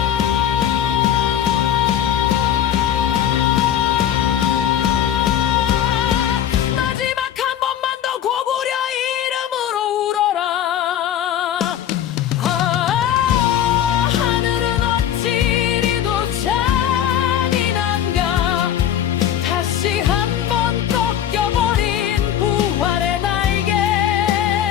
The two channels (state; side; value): quieter; right; 10.4 dB